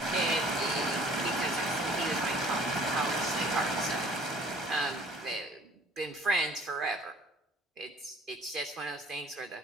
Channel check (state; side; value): normal; both; correlation 0.53